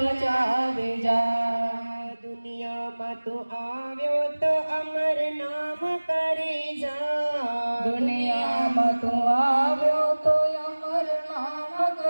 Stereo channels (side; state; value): both; inverted; correlation -1.00